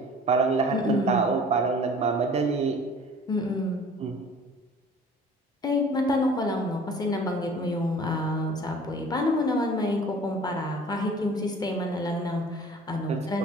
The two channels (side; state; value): both; normal; correlation 0.47